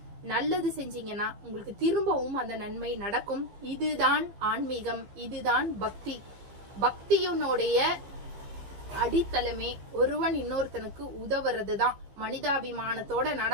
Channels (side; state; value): left; late; 15 ms